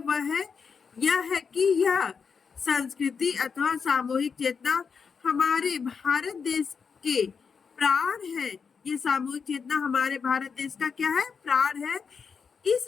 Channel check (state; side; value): quieter; right; 5.9 dB